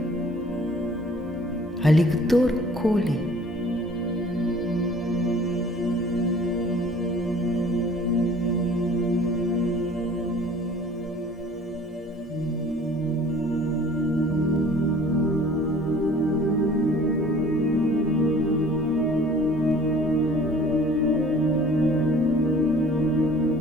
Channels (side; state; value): both; normal; correlation 0.50